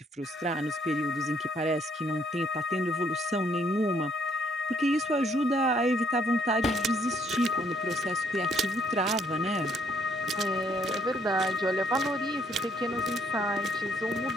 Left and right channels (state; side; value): normal; both; correlation 0.67